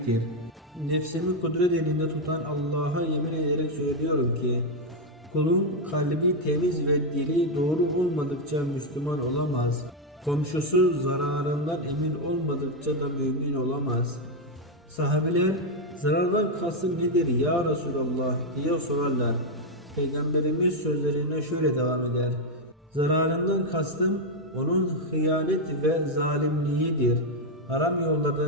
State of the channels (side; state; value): both; normal; correlation 0.02